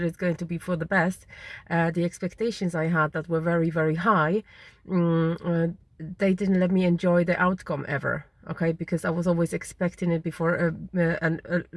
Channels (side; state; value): both; identical; correlation 1.00